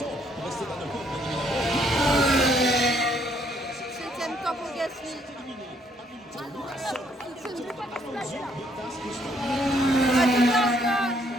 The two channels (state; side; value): normal; both; correlation 0.68